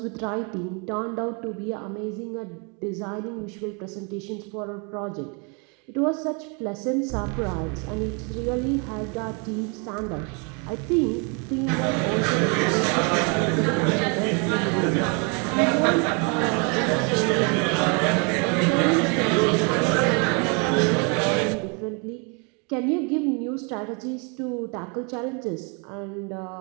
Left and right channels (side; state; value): left; quieter; 34.2 dB